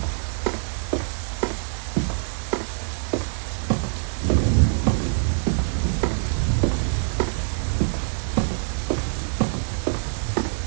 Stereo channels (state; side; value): silent; left; digital silence